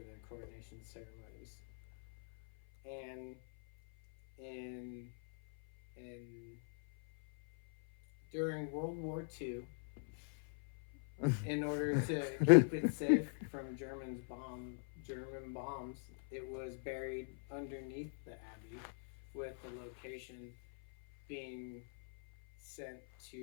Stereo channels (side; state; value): right; silent; 50 dB below the other